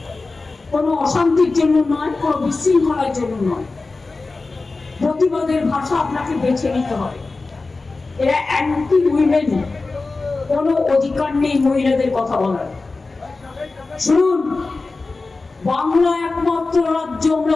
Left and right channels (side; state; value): right; quieter; 3.7 dB